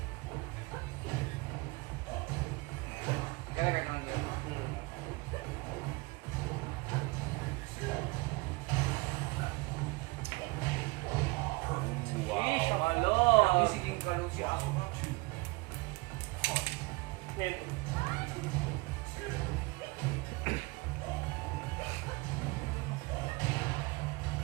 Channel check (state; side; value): quieter; left; 24.9 dB